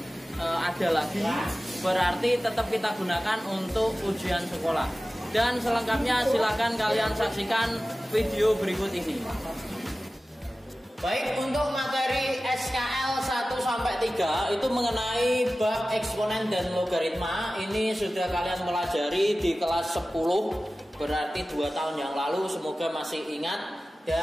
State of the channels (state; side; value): normal; both; correlation 0.96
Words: ada lagi, berarti tetap kita gunakan untuk ujian sekolah. Dan selengkapnya silakan kalian saksikan video berikut ini. Baik, untuk materi SKL 1-3 itu mengenai bab eksponen dan logaritma. Ini sudah kalian pelajari di kelas 10, berarti 2 tahun yang lalu. Semoga masih ingat